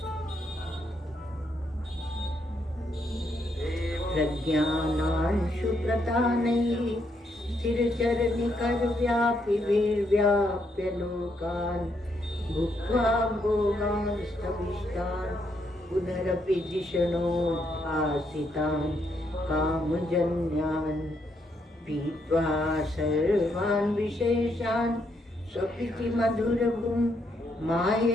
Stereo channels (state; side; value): normal; both; correlation 0.76